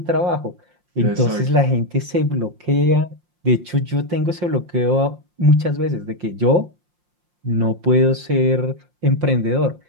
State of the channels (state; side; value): late; left; 5.7 ms